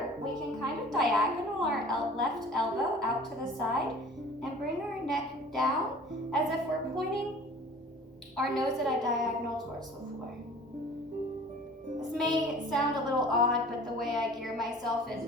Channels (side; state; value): both; normal; correlation 0.46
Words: we can kind of diagonal our left elbow out to the side and bring our neck down as if we're pointing our nose at a diagonal towards the floor. This may sound a little odd, but the way I gear myself is